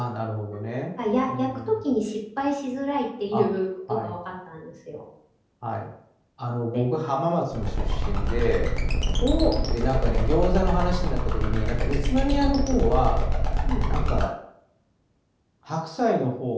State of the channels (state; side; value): identical; both; correlation 1.00